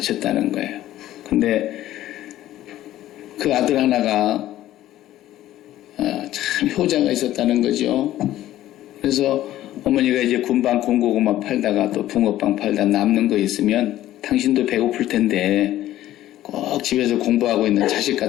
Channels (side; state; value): right; quieter; 13.9 dB